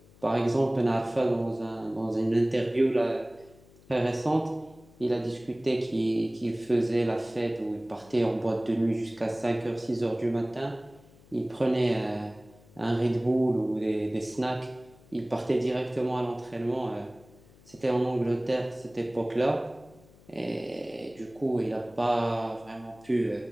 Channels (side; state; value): left; noise; hum, 25 dB below the sound